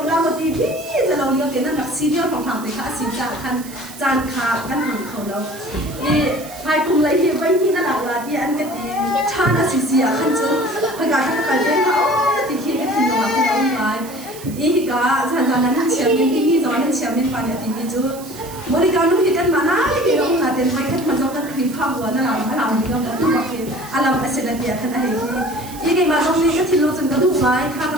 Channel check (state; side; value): noise; right; hiss, 16 dB below the sound